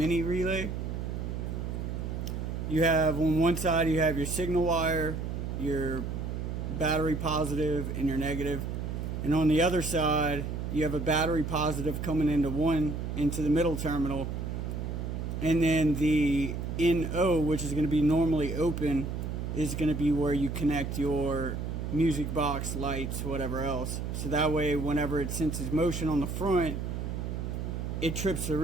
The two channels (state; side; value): noise; right; hum, 4 dB below the sound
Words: relay. You have on one side you have your signal wire, your battery positive and your negative, and on the other side you have a battery positive coming into the middle terminal, and then the NO, which is going to be normally open, is going to be where you connect your music box, lights, whatever else. So that way whenever it senses motion on the front, it trips the